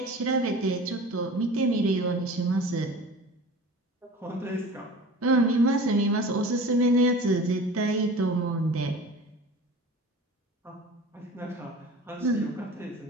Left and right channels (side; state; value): both; normal; correlation 0.39